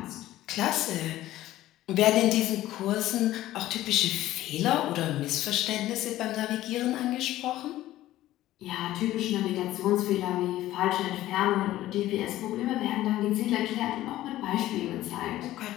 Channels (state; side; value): quieter; right; 14.8 dB